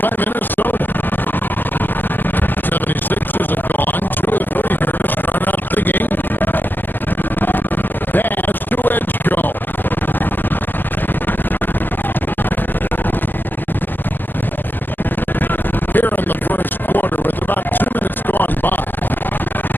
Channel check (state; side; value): late; right; 0.089 ms